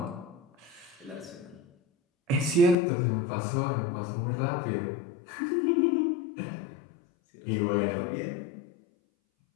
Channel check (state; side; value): drops out; right; at 2.8 s